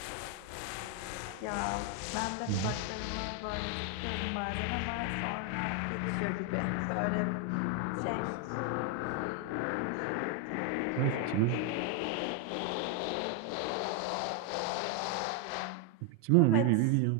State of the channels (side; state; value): both; different; correlation 0.01